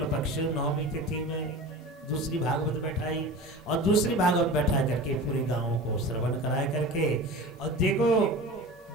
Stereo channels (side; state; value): both; normal; correlation 0.34